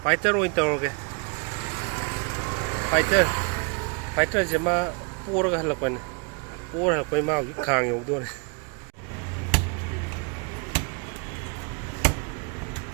rồi tao rồi fighter chỉ mà pura cái là quen pura là quen mau cái khang nhiều thôi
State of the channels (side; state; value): left; quieter; 34.9 dB